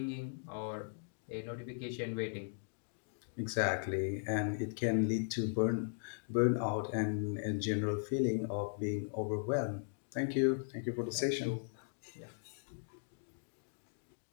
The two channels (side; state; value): right; silent; digital silence